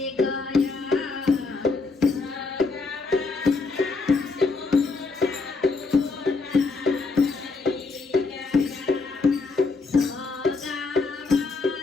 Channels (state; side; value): quieter; right; 4.0 dB